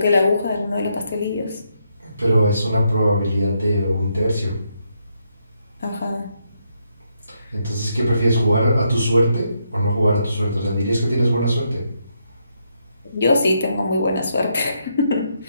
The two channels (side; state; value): both; inverted; correlation -0.78